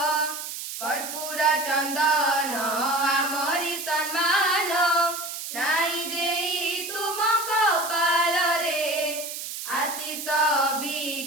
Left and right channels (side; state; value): right; noise; hiss, 7 dB below the sound